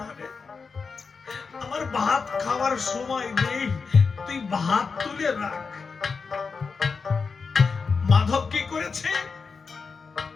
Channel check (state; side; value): quieter; right; 5.0 dB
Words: রে, আমার ভাত খাওয়ার সময় নেই, তুই ভাত তুলে রাখ। মাধব কি করেছে?